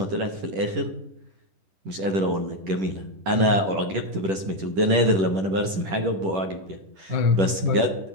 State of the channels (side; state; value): left; late; 10 ms